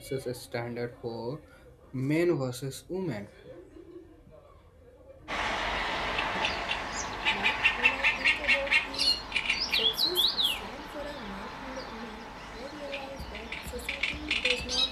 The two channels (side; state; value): both; identical; correlation 1.00